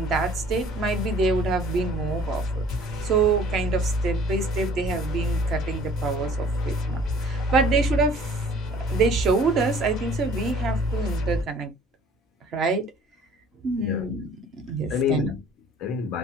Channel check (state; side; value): normal; both; correlation 0.52